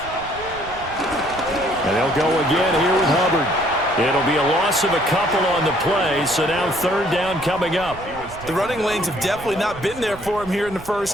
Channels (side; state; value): right; noise; rumble, 16 dB below the sound